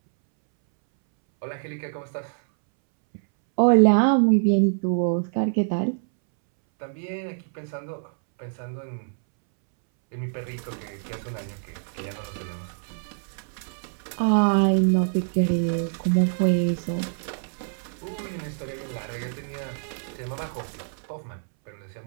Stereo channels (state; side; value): silent; left; 61 dB below the other